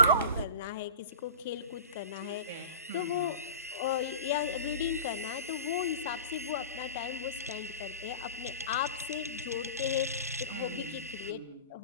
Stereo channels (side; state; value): both; inverted; correlation -0.35